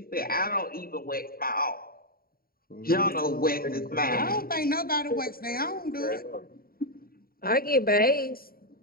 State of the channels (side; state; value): right; late; 0.43 ms